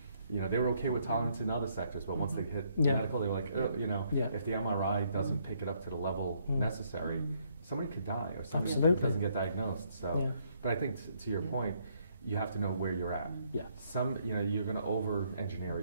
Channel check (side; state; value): both; inverted; correlation -0.70